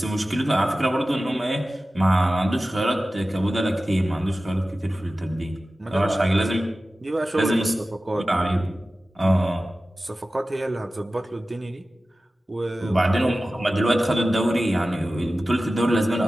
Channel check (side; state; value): both; normal; correlation 0.95